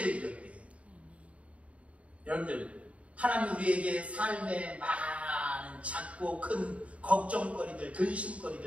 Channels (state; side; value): late; left; 0.065 ms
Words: 드렸대요. 여러분들, 하나님 우리에게 삶의 많은 작고 큰 걱정거리들,